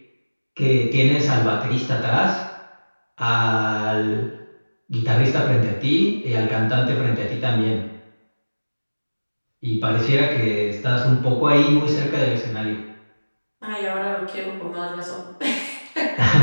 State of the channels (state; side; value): inverted; both; correlation -1.00